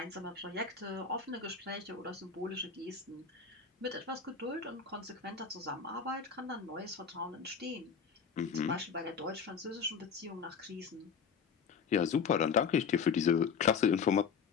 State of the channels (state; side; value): quieter; right; 6.1 dB